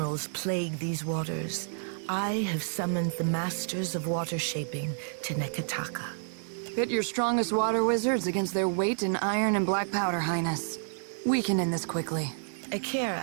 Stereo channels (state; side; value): silent; left; digital silence